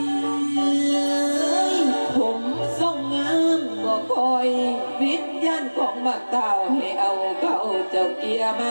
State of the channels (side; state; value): both; inverted; correlation -1.00